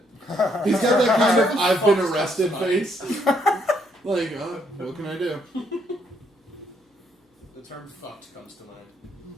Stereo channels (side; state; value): both; normal; correlation 0.72